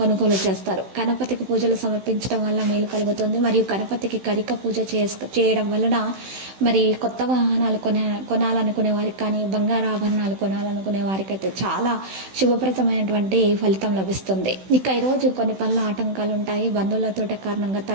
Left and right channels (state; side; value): late; left; 16 ms